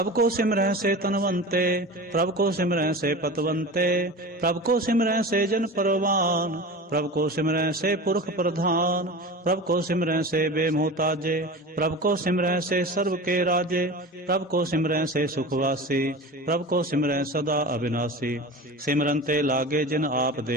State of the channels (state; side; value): normal; both; correlation 0.32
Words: ਕੋ ਸਿਮਰੈ ਸੇ ਤਨਵੰਤੇ, ਪ੍ਰਭ ਕੋ ਸਿਮਰੈ ਸੇ ਪਤਵੰਤੇ। ਪ੍ਰਭ ਕੋ ਸਿਮਰੈ ਸੇ ਜਨ ਪਰਵਾਨ, ਪ੍ਰਭ ਕੋ ਸਿਮਰੈ ਸੇ ਪੁਰਖ ਪ੍ਰਧਾਨ। ਪ੍ਰਭ ਕੋ ਸਿਮਰੈ ਸੇ ਬੇਮੋਹਤਾਜੇ, ਪ੍ਰਭ ਕੋ ਸਿਮਰੈ ਸੇ ਸਰਬ ਕੇ ਰਾਜੇ। ਪ੍ਰਭ ਕੋ ਸਿਮਰੈ ਸੇ ਸੁਖਵਾਸੀ, ਪ੍ਰਭ ਕੋ ਸਿਮਰੈ ਸਦਾ ਅਬਿਨਾਸੀ। ਸਿਮਰਨ ਤੇ ਲਾਗੇ ਜਿਨ ਆਪ